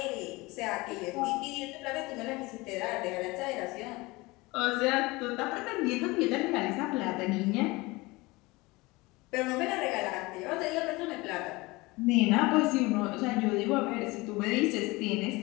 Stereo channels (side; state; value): right; quieter; 22.7 dB